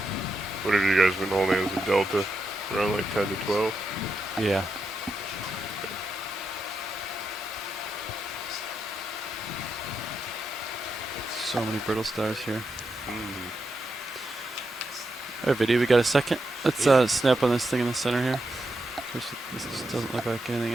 What have you guys been holding as a delta? Around like 10 to 12? Yeah. So many brittle stars here. Alright, video, we got a second. Let's snap on this thing in the center here. This just doesn't look like anything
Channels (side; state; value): both; normal; correlation 0.85